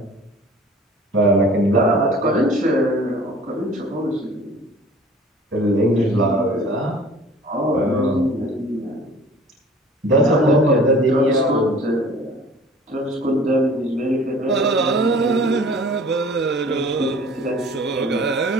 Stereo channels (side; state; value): both; normal; correlation 0.48